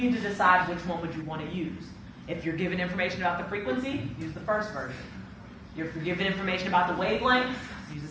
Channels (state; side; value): identical; both; correlation 1.00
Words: to decide which one would you want to use. If you're given information about the frequency, use the first version. If you're given information about the wavelength, use the